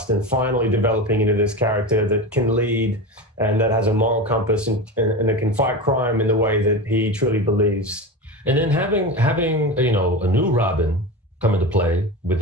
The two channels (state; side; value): normal; both; correlation 0.25